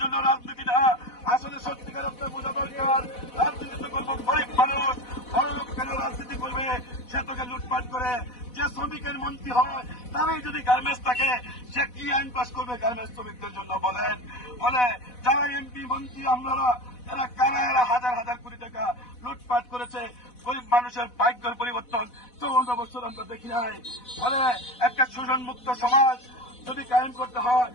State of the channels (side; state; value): right; late; 4.1 ms